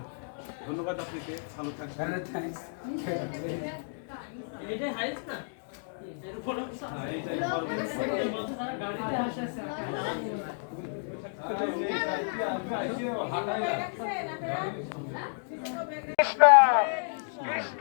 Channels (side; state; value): right; silent; digital silence